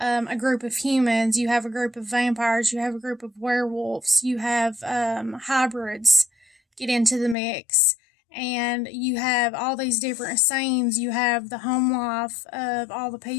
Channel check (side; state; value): right; drops out; at 7.4 s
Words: group of humans, you have a group of vampires, you have a group of werewolves, you have hybrids get into the mix, and you have all these different scenes. You have the home life of all the